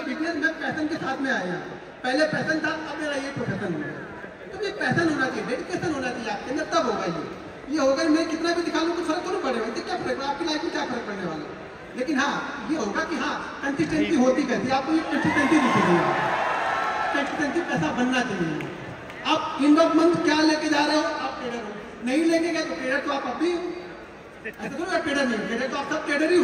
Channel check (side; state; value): both; identical; correlation 1.00